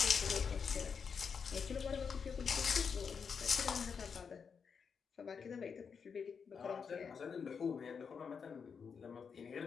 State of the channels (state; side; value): quieter; right; 6.2 dB